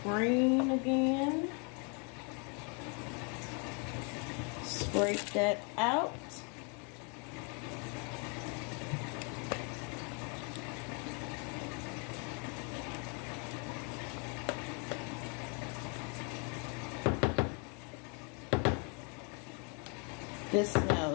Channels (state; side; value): quieter; right; 35.8 dB